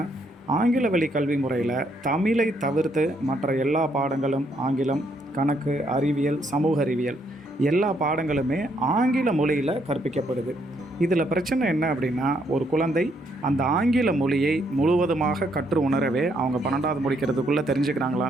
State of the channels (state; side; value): normal; both; correlation 0.72